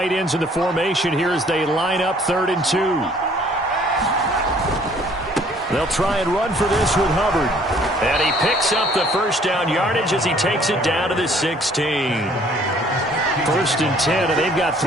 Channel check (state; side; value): normal; both; correlation 0.58